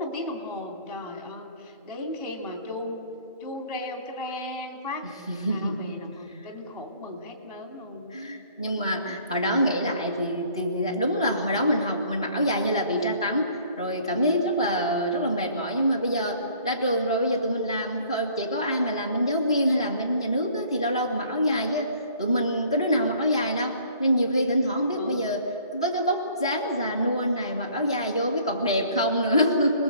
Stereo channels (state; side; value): inverted; both; correlation -0.56